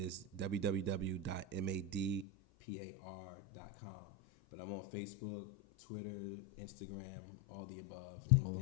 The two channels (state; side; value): drops out; right; at 2.2 s